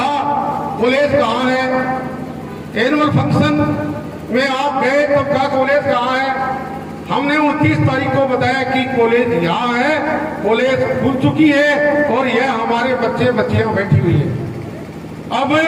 कॉलेज कहाँ है। एनुअल फंक्शन में आप गए तो क्या कॉलेज कहाँ है। हमने 29 तारीख को बताया कि कॉलेज यहाँ है, कॉलेज खुल चुकी है और यह हमारे बच्चियां बैठी हुई है। अब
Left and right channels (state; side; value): identical; both; correlation 1.00